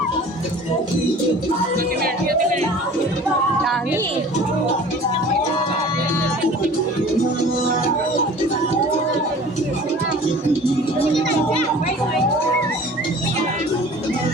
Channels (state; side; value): normal; both; correlation 0.45